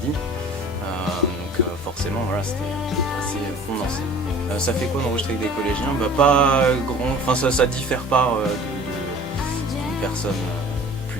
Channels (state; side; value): normal; both; correlation 0.46